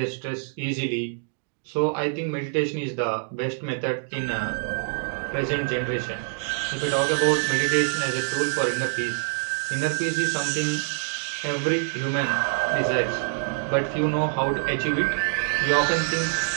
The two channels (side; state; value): left; silent; 58 dB below the other